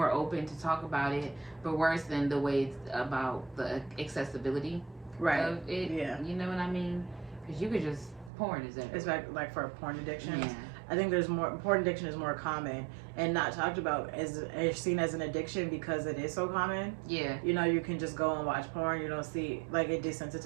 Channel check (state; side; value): drops out; left; at 8.3 s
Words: open to talk about it. But worse than the way it's about the accessibility of it. Yeah. You know what I mean? Because you could just, porn is everywhere. It's like for porn addiction. Yeah. I think porn addiction is more common and not talked about as seen as an addiction because it is so common. Yeah. You know, you can just go and watch porn. You don't see, like, it